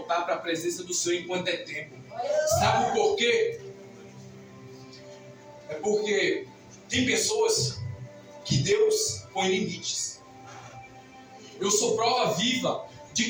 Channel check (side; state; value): both; identical; correlation 1.00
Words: para a presença do Senhor enquanto é tempo. Sabe por quê? É porque tem pessoas que Deus põe limites. Eu sou prova viva de